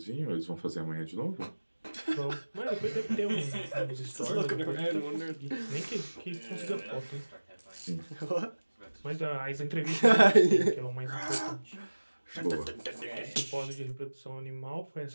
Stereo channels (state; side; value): inverted; both; correlation -1.00